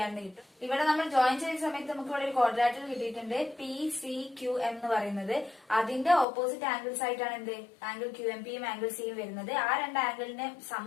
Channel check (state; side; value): drops out; right; at 6.2 s